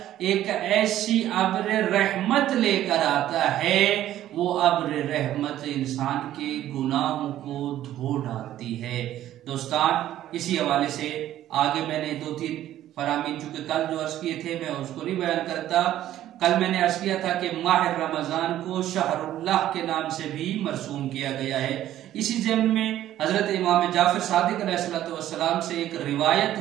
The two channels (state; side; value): quieter; left; 12.8 dB